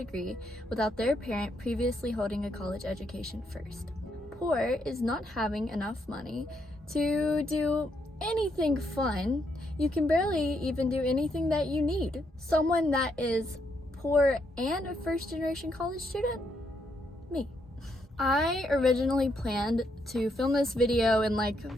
without their parent previously holding a college education first. Poor is not having enough money to do anything fun. You can barely even do anything that you need. Someone that is poor and a first-generation college student? Me. I originally planned to film this video in like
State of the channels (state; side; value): normal; both; correlation 0.76